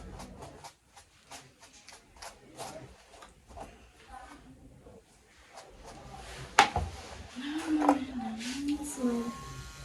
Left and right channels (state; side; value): identical; both; correlation 1.00